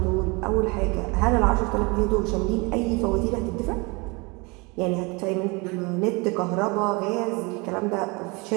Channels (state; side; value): quieter; left; 27.7 dB